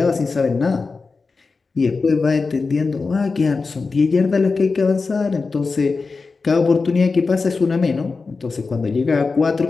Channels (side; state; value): right; quieter; 4.3 dB